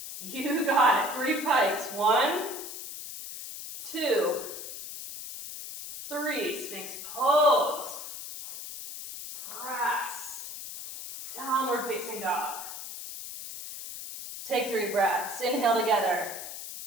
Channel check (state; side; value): noise; left; hiss, 9 dB below the sound